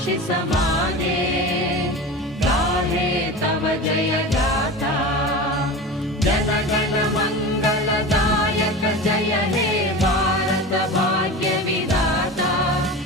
माने गाहे तव जय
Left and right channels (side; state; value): both; normal; correlation 0.30